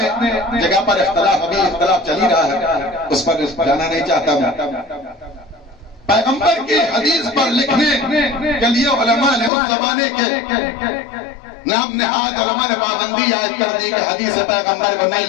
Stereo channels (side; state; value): right; drops out; at 9.5 s